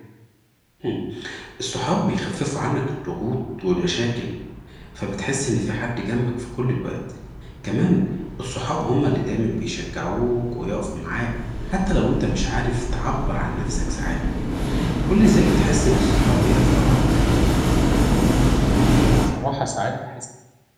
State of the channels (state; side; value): identical; both; correlation 1.00